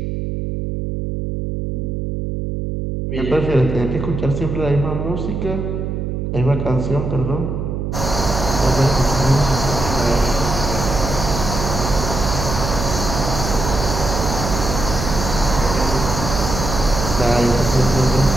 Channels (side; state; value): right; noise; hum, 3 dB below the sound